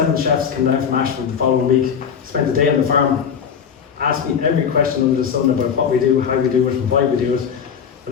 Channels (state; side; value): quieter; right; 7.2 dB